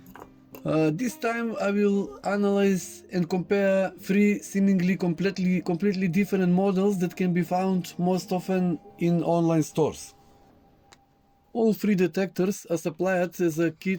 This time I will analyze and compare three seemingly completely different models that can be found most often in online stores. All three detectors are supplied as a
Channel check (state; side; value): identical; both; correlation 1.00